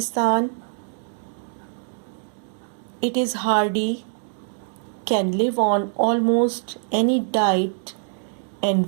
It is hardy, can live on almost any diet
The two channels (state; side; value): silent; left; digital silence